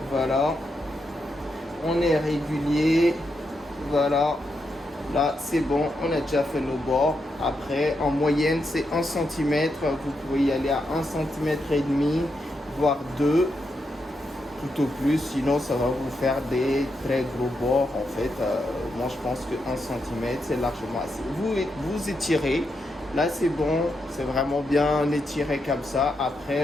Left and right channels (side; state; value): both; normal; correlation 0.83